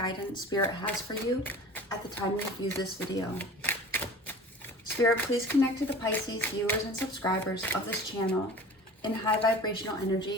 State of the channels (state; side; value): normal; both; correlation 0.40